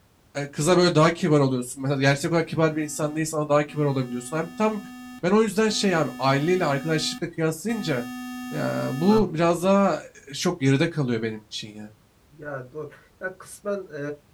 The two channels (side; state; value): both; identical; correlation 1.00